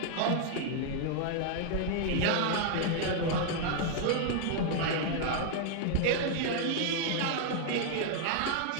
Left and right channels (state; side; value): different; both; correlation 0.00